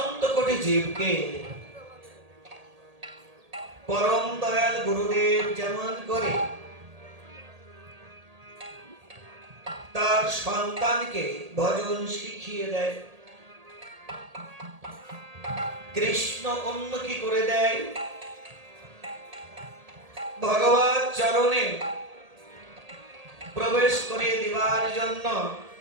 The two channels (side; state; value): left; late; 1.8 ms